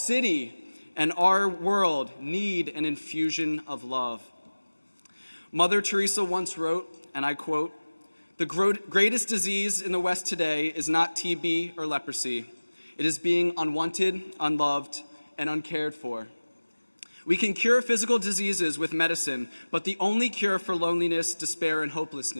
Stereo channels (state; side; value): inverted; both; correlation -1.00